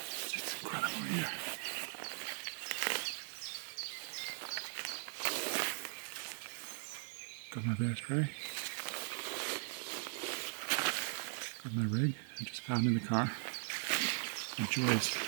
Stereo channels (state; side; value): silent; left; digital silence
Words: It's incredible here. Got my bear spray. Got my rig I just found in the car. The joys